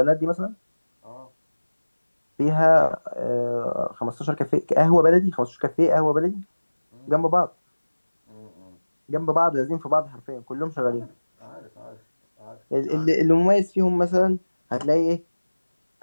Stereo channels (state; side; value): inverted; both; correlation -1.00